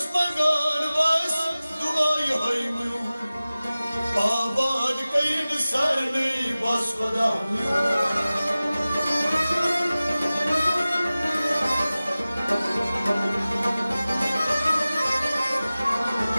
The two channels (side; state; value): both; inverted; correlation -0.97